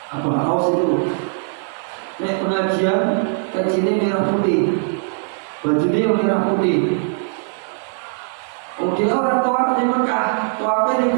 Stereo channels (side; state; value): left; silent; 66 dB below the other